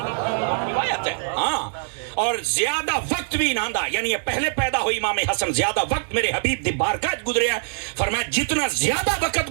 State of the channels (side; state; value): left; silent; digital silence